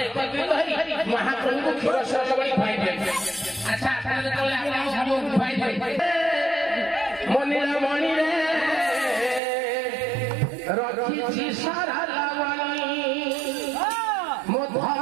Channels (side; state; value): left; drops out; at 9.4 s